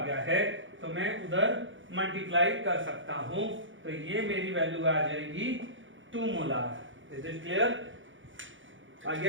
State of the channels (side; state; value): left; late; 0.56 ms